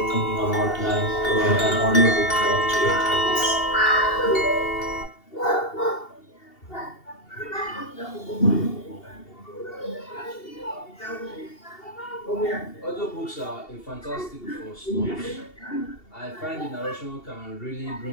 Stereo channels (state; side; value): late; right; 2.8 ms